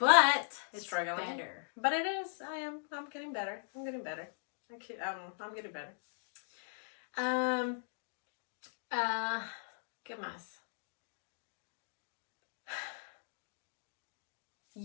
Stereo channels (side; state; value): right; silent; digital silence